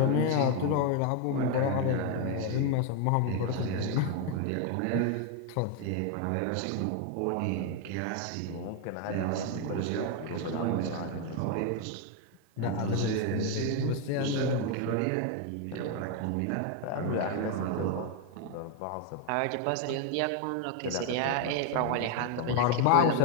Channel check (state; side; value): different; both; correlation 0.01